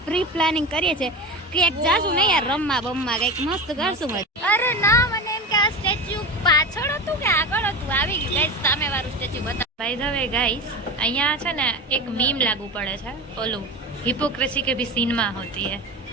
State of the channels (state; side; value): normal; both; correlation 0.26